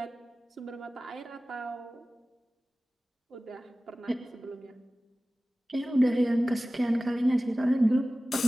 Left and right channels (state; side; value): normal; both; correlation 0.97